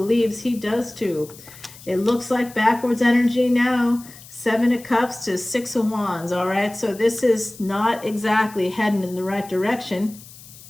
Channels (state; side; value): noise; left; hiss, 19 dB below the sound